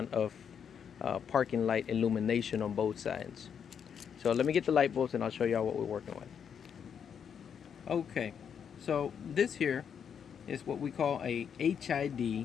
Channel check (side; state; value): right; quieter; 7.6 dB